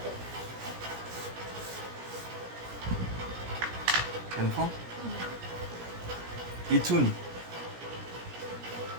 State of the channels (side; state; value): left; late; 17 ms